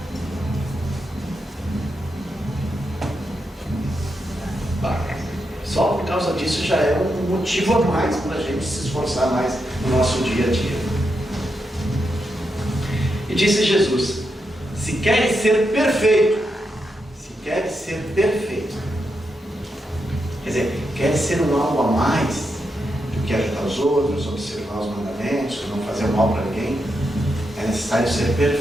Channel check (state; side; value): normal; both; correlation 0.84